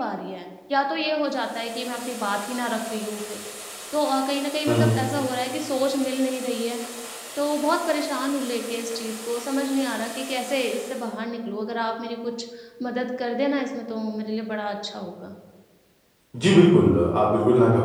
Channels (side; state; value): both; identical; correlation 1.00